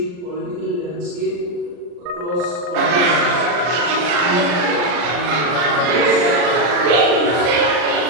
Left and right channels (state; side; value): late; left; 40 ms